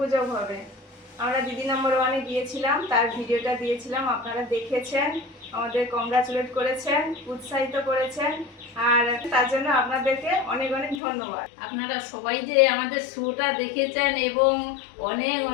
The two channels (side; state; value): right; drops out; at 11.0 s